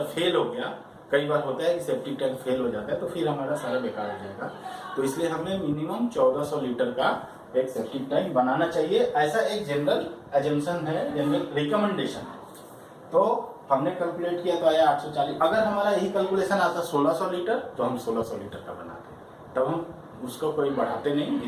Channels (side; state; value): both; identical; correlation 1.00